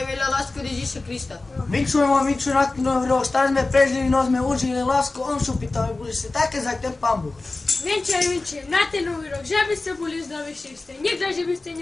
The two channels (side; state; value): right; quieter; 3.3 dB